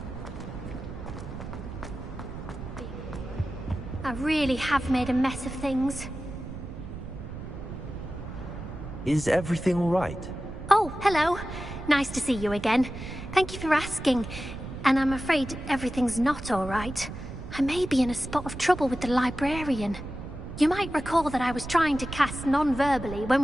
I really have made a mess of things. Is everything all right? Oh, hello. Nice to see you again. Thank you for asking. And I'm afraid everything's not all right. I may be in a spot of trouble with the librarian. You might recall that I was trying to cast non-verbally when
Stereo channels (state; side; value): noise; right; rumble, 10 dB below the sound